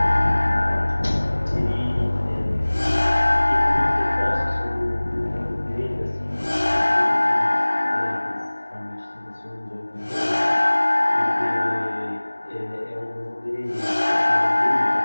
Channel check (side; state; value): both; inverted; correlation -1.00